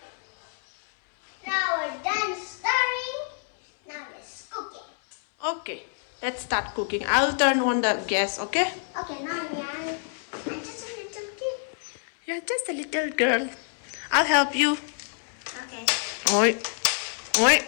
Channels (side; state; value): right; silent; 60 dB below the other